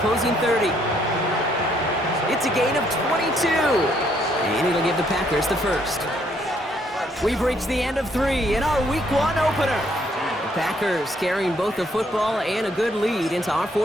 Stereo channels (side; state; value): both; normal; correlation 0.69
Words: 30. It's a gain of 22. And it'll give the Packers the first. We've reached the end of 3 in our Week 1 opener. The Packers carrying both the football and a good lead into our